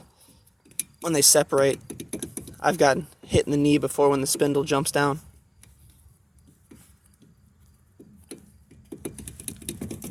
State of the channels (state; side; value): identical; both; correlation 1.00